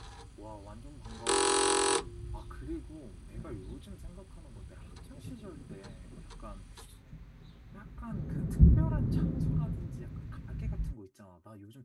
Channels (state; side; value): identical; both; correlation 1.00